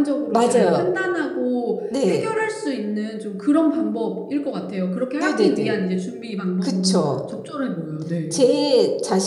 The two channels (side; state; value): both; identical; correlation 1.00